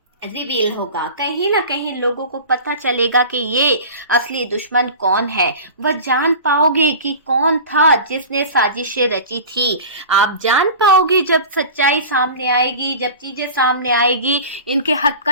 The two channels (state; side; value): inverted; both; correlation -0.35